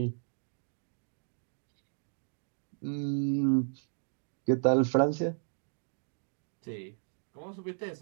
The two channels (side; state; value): left; silent; digital silence